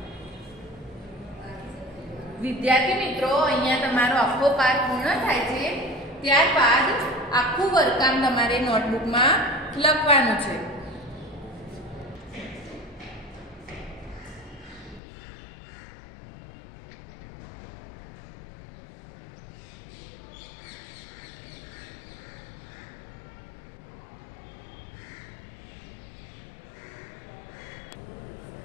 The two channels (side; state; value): right; drops out; at 15.0 s